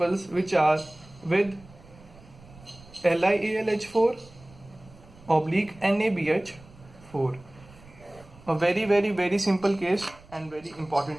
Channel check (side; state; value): right; noise; rumble, 23 dB below the sound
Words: which are with LiAlH4 oblique NaBH4. A very simple case and very